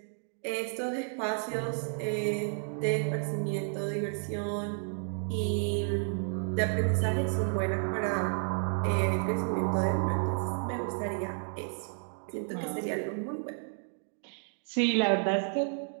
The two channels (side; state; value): left; silent; 57 dB below the other